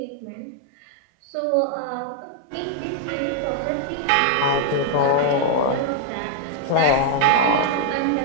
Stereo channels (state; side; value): different; both; correlation -0.01